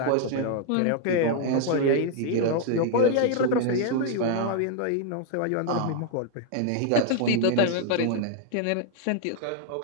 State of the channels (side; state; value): both; different; correlation 0.00